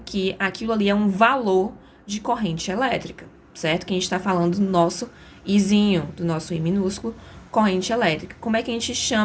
que aquilo ali é um valor de corrente elétrica, certo? Que a gente está falando do nosso Izinho, do nosso I minúsculo, corrente elétrica. Como é que a gente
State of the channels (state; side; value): identical; both; correlation 1.00